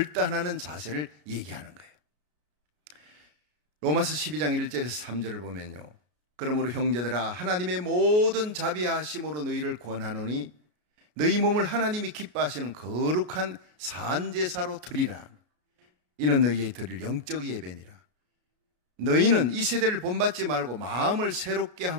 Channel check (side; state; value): left; late; 33 ms